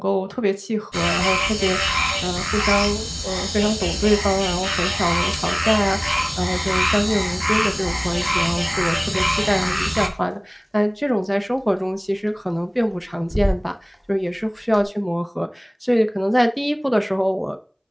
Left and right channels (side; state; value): both; identical; correlation 1.00